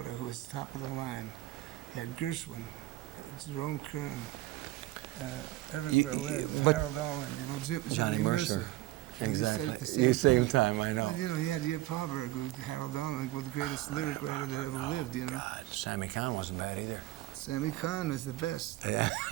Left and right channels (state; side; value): quieter; left; 16.7 dB